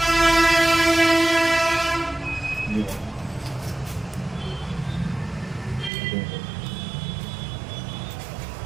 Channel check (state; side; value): drops out; left; at 5.9 s